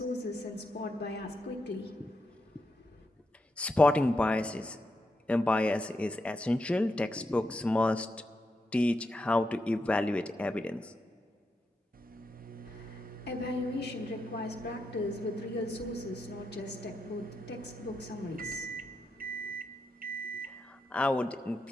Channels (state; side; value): normal; both; correlation 0.84